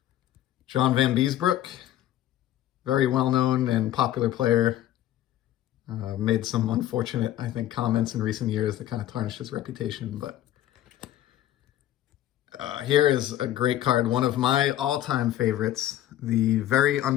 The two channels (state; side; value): quieter; right; 12.9 dB